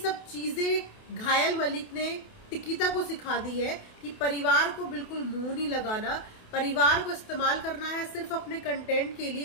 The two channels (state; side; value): late; right; 28 ms